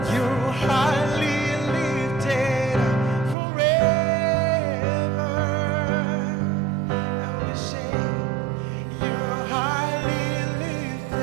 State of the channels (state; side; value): drops out; left; at 3.4 s